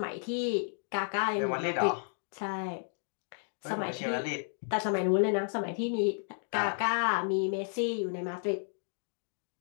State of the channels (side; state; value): right; silent; digital silence